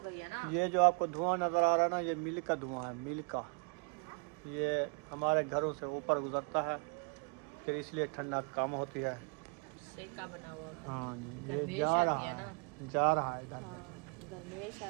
गई है ना। ये जो आपको धुआं नजर आ रहा है ना, ये मिल का धुआं है, मिल का। ये हमारे घरों से ऊपर गुजरता है, फिर इसलिए ठंडा कम होती है। सेका बना हुआ होता है। हाँ जी, ये गर्मेश जा आती रहा है है ना। जा रहा है इधर। हाँ गर्मेश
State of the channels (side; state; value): left; quieter; 35.7 dB